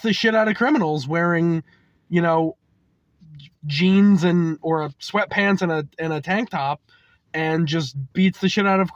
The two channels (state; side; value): identical; both; correlation 1.00